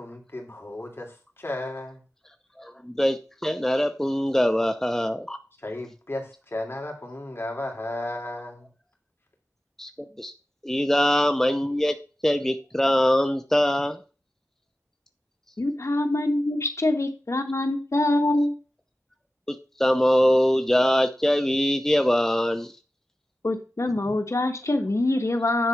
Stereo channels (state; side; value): normal; both; correlation 0.94